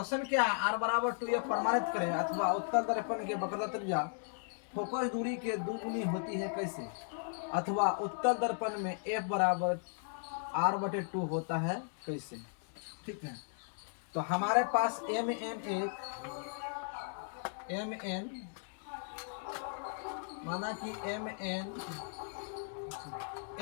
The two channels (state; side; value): silent; right; digital silence